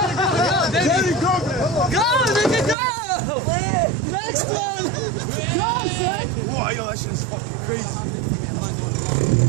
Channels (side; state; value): left; drops out; at 2.8 s